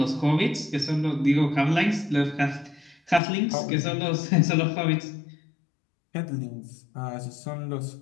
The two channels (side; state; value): right; drops out; at 3.2 s